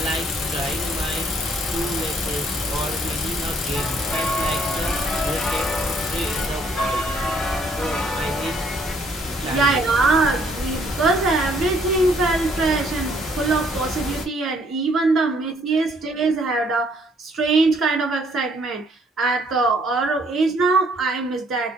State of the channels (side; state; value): both; normal; correlation 0.65